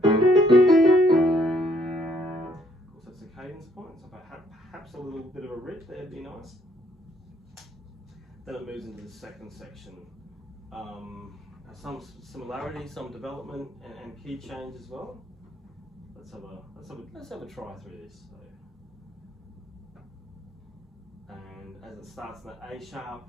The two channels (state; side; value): normal; both; correlation 0.66